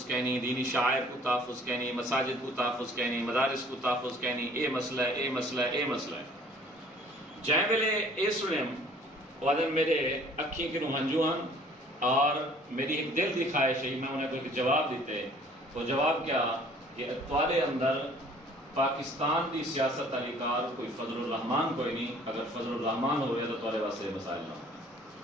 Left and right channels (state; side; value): normal; both; correlation 0.54